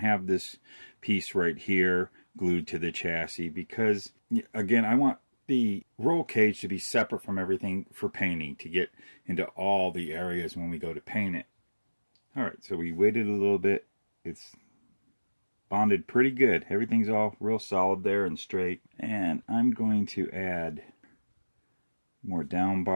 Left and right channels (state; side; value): inverted; both; correlation -1.00